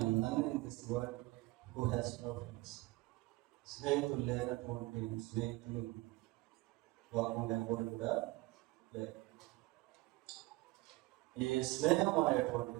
none in this world who has no friends. స్నేహితులు లేనటువంటి స్నేహితులు వాకుండా ఎవరు కూడా లేదు. ఈ స్నేహం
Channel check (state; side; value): quieter; left; 20.5 dB